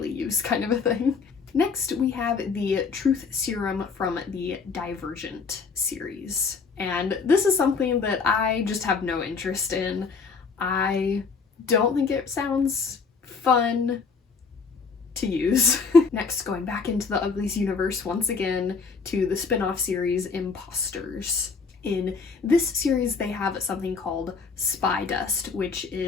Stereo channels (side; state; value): right; quieter; 5.1 dB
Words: use kind of a thing. Next, we have the Truth Serum from the Divergent series. And this is something that I just have no interest in. I don't think it sounds fun to use. Next, going back into the Uglies universe once again to the spin-off series Imposters. In this series, they have something called Spy Dust, which